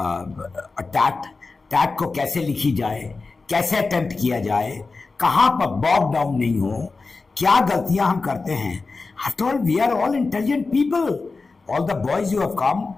टैट को कैसे लिखी जाए, कैसे attempt किया जाए, कहाँ पर बॉग डाउन नहीं हो, क्या गलतियां हम करते हैं. After all, we are all intelligent people. All the boys you have come,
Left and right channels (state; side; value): quieter; right; 4.0 dB